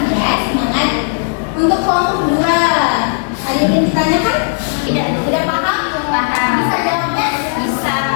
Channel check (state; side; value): silent; right; digital silence